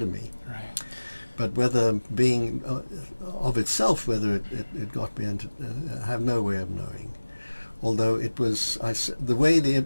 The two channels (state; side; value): inverted; both; correlation -1.00